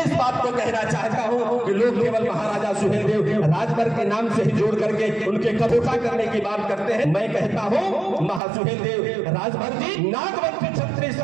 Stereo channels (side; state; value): left; drops out; at 8.4 s